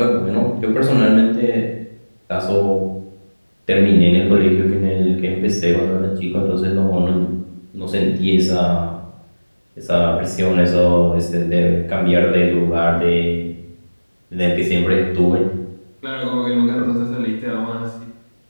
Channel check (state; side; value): inverted; both; correlation -1.00